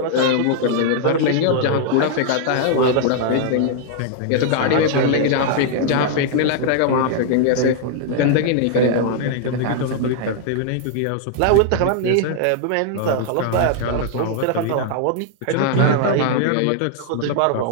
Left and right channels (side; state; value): both; different; correlation 0.00